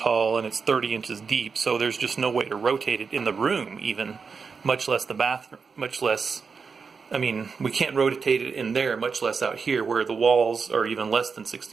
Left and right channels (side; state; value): left; quieter; 5.3 dB